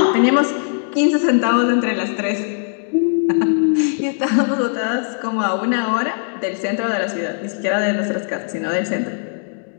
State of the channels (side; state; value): right; silent; digital silence